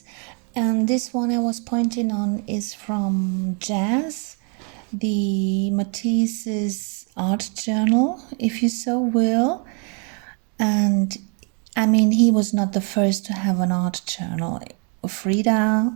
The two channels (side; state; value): left; quieter; 38.0 dB